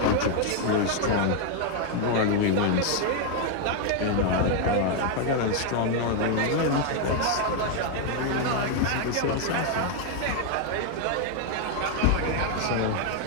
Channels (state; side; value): different; both; correlation 0.01